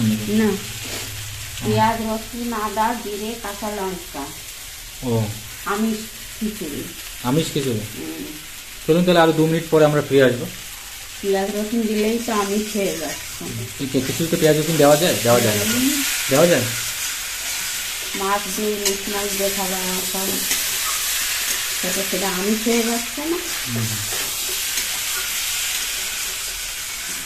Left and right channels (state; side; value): identical; both; correlation 1.00